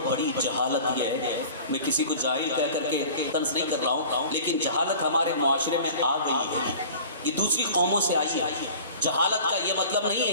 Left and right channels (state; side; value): inverted; both; correlation -0.41